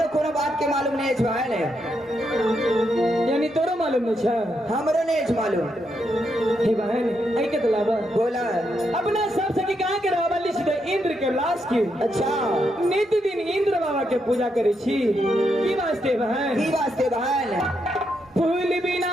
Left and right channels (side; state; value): both; normal; correlation 0.80